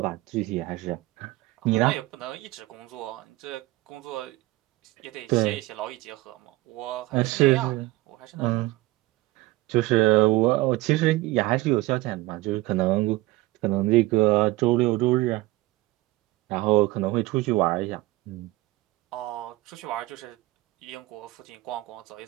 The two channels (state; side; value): quieter; left; 19.2 dB